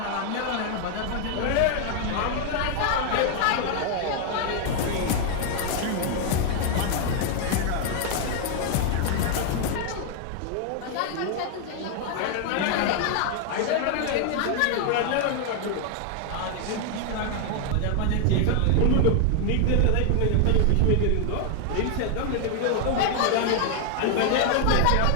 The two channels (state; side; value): different; both; correlation 0.00